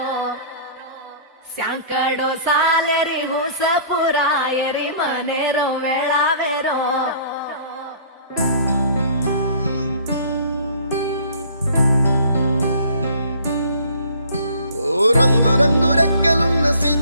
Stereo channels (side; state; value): both; inverted; correlation -0.52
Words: ಸ್ಯಾಂಕಡೋ ಸಾಲೆರಿ ಹುಸಪುರಾಯರಿ ಮನೆರೋ ವೇಳಾವೆರೋ రంగు రంగు రెక్కలున్న